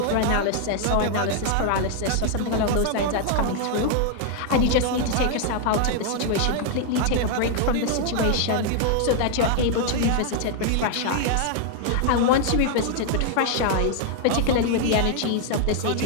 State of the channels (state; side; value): different; both; correlation 0.00